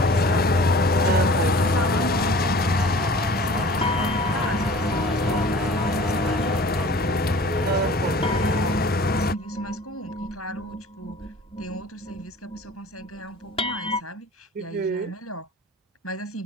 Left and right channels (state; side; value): normal; both; correlation 0.45